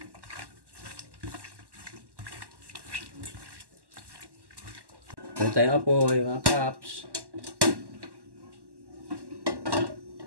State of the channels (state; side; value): late; left; 1.1 ms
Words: Meron tayong apoy, mga kaps.